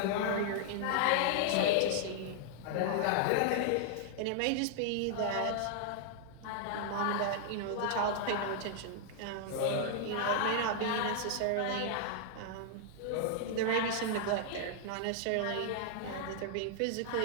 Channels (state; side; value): different; both; correlation -0.01